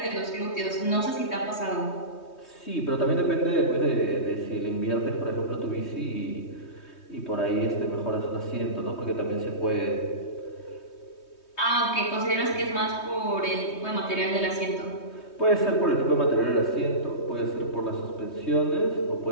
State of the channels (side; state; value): right; late; 3.2 ms